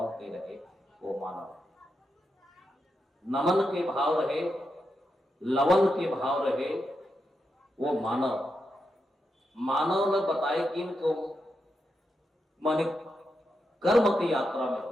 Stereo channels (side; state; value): both; normal; correlation 0.86